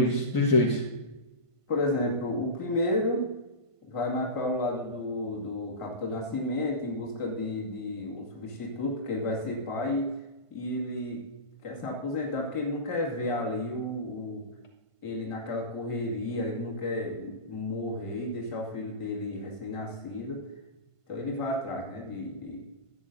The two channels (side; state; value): right; late; 1.5 ms